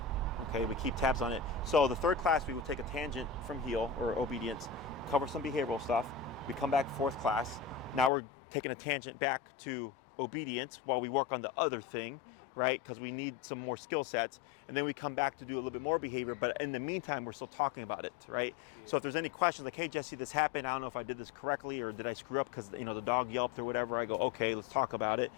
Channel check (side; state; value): right; drops out; at 8.1 s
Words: Okay, we keep tabs on it. So the third class, we will take a tangent from heal or obedience, cover some behavioral stuff. We come back fourth class. Now we're taking a tangent back to obedience while we work on the other thing, right? Because we need some more skill sets. And then we come back to do a little bit more behavior, but in the meantime, we're still talking about it, right? Yeah. So if there's any questions like, hey, Jesse, this happened, I don't know if I did this correctly or did I screw up because, the dog yelped or whatever, I go, okay, let's talk about it.